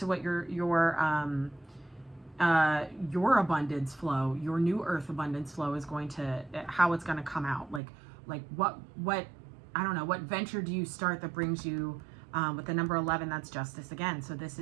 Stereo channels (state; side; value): drops out; left; at 7.8 s